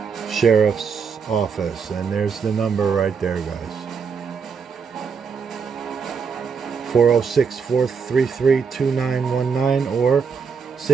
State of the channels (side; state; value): left; quieter; 6.0 dB